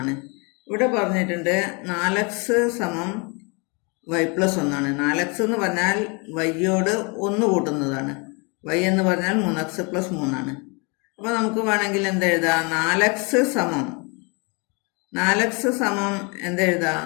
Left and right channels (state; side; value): quieter; right; 31.6 dB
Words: ആണ്. ഇവിടെ പറഞ്ഞിട്ടുണ്ട് 4x സമം y+1 ആണ്. 4x എന്ന് പറഞ്ഞാൽ വൈയോട് 1 കൂട്ടുന്നതാണ്. y എന്ന് പറഞ്ഞാൽ 3x+3 ആണ്. അപ്പോൾ നമുക്ക് വേണമെങ്കിൽ എന്തെഴുതാം? 4x സമം എന്തെഴുതാം?